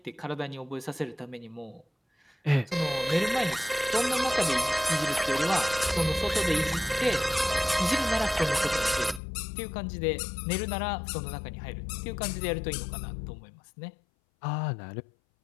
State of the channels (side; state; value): right; drops out; at 9.2 s